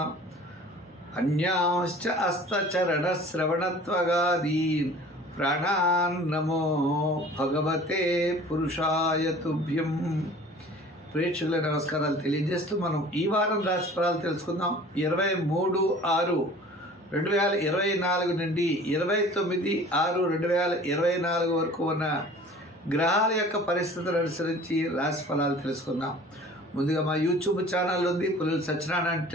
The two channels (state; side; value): normal; both; correlation 0.46